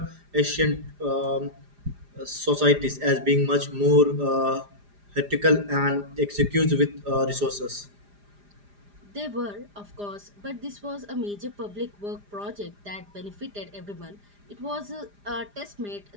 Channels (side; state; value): left; late; 4.9 ms